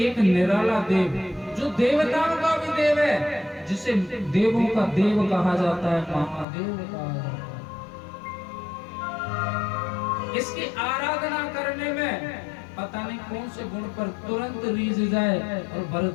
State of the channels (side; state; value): right; drops out; at 6.5 s